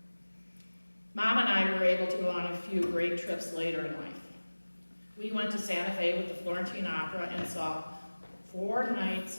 Mom and I were able to go on a few great trips later in life. We went to Santa Fe with the Florentine Opera and saw 4 nights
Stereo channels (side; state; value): both; inverted; correlation -1.00